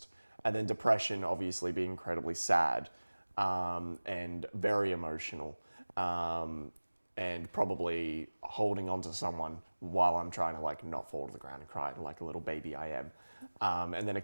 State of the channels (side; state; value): both; inverted; correlation -1.00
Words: And then Depression obviously being incredibly sad, and very emotional, and probably holding on to someone while I'm trying to like not fall to the ground and cry like a little baby I am. And then